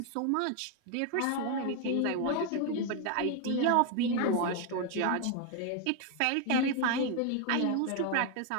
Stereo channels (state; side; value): different; both; correlation 0.01